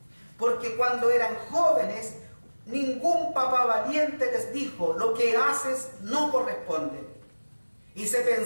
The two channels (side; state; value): both; inverted; correlation -1.00